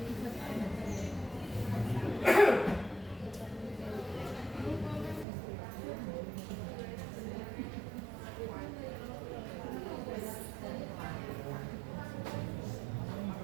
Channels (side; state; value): left; drops out; at 5.2 s